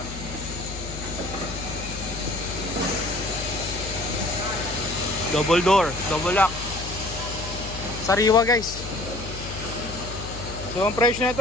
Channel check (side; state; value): left; noise; hum, 10 dB below the sound